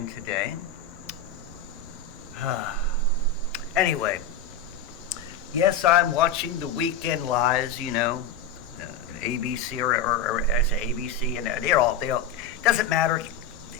today. Anyway, yes, I'm watching the Weekend Lies, ABC or I say ABC, and they all, doesn't matter.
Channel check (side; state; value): right; quieter; 5.6 dB